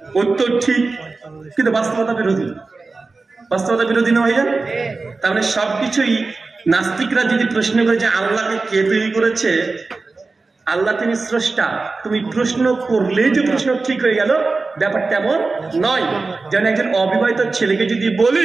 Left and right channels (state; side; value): quieter; left; 3.8 dB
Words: উত্তর ঠিক, কিন্তু বাস্তবতা বিরোধী। বাস্তবতা বিরোধী না ভাইজান? তার মানে সবকিছুই নাস্তিকরা যদি প্রশ্ন করে যে আল্লাহকে কে তৈরি করেছে, আল্লাহ তিনি স্রষ্টা, তুমি প্রশ্ন করলেই যে প্রশ্ন ঠিক হয়ে গেল, ব্যাপারটা এমন নয়। যেমন একজন অবিবাহিত ছেলেকে যদি